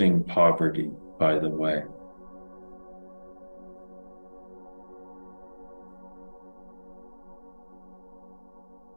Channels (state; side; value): inverted; both; correlation -1.00